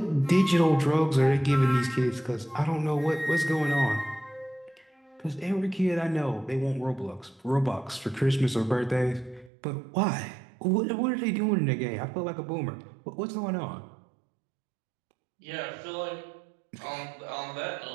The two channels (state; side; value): drops out; left; at 9.5 s